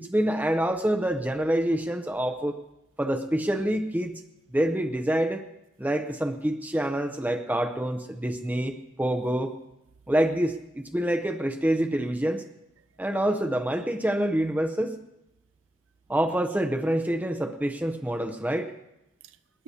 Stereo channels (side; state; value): both; normal; correlation 0.89